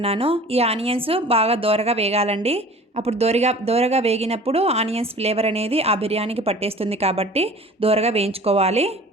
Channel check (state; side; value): normal; both; correlation 0.44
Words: ఈ ఆనియన్స్ బాగా దోరగా వేగాలండి. అప్పుడు దోరగా వేగినప్పుడు ఆనియన్స్ ఫ్లేవర్ అనేది ఆ బిర్యానీకి పట్టేస్తుంది కాబట్టి దోరగా వేయించుకోవాలి.